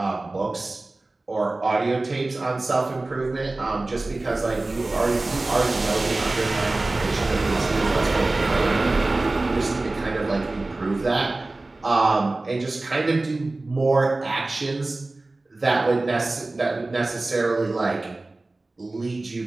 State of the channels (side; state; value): left; quieter; 3.0 dB